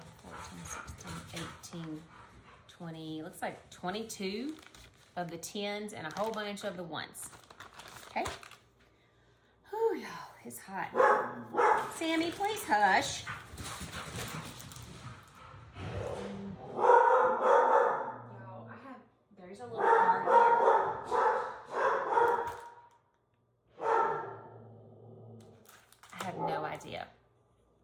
14, 16, 18, 20, looks like 22 of the tens and a whole bunch of the ones. Okay? Whew, y'all, it's hot. Sammy, please hush. Y'all, there's a little car here. I have no idea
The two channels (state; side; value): identical; both; correlation 1.00